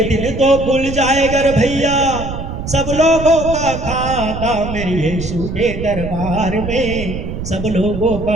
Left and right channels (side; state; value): right; noise; rumble, 7 dB below the sound